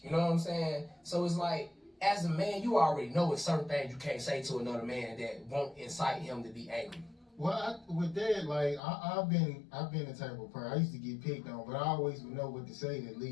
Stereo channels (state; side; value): drops out; right; at 8.8 s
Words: You know what I'm saying? So it's like, as a man, you already know it's certain things you can't say to another man that won't incite him to be angry. Well, with that, like I've been the type of person. I used to get picked on, but I always would know what to say to